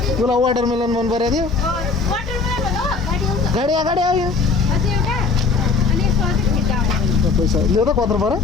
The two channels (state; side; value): quieter; right; 4.5 dB